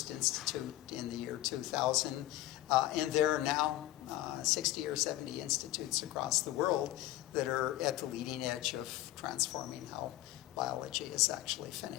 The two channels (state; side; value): quieter; right; 15.5 dB